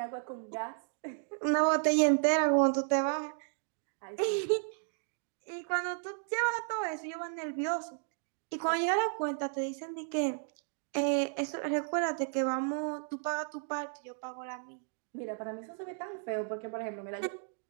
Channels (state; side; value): silent; left; digital silence